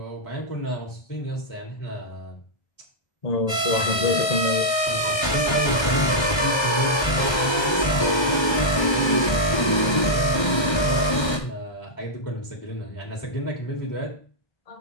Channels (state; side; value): late; right; 1.3 ms